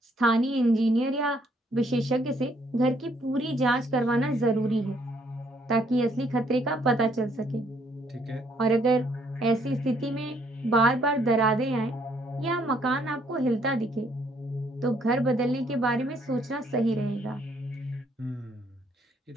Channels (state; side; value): normal; both; correlation 0.67